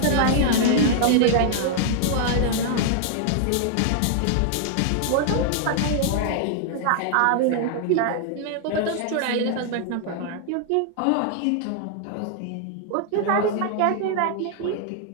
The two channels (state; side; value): different; both; correlation -0.01